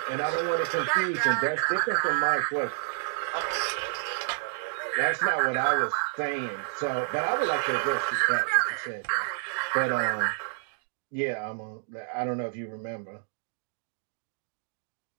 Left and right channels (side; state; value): left; silent; digital silence